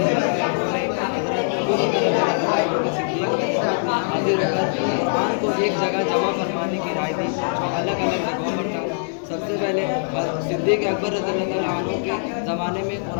एक जगह जमा फरमाने की राय दी जो अलग अलग जगहों पर था। सबसे पहले सिद्दीक़ अकबर रज़ियल्लाहु अन्हु के ज़माने में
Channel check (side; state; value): right; silent; digital silence